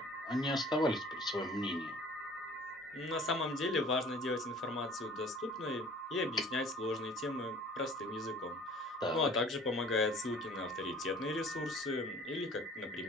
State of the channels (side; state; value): both; normal; correlation 0.49